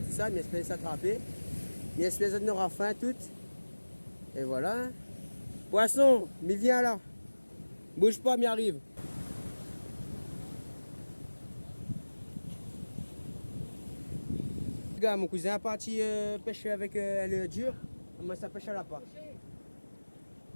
ça, il espère s'attraper. Il espère qu'il aura faim tout. Et voilà. Poisson, mais viens là. Bouge pas, m'y arrive. Les gars, mon cousin est parti pêcher avec le dur. Moi, ça pêche à la part.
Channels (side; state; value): both; inverted; correlation -1.00